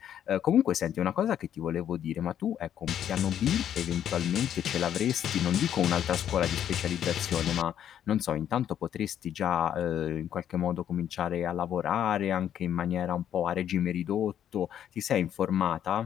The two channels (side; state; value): right; quieter; 10.0 dB